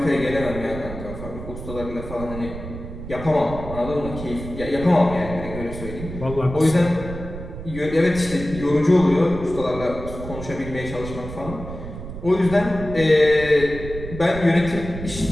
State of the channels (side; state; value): right; noise; rumble, 10 dB below the sound